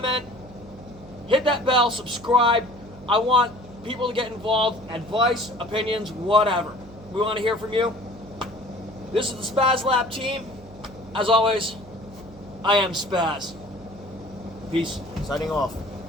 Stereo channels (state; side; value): noise; right; hum, 19 dB below the sound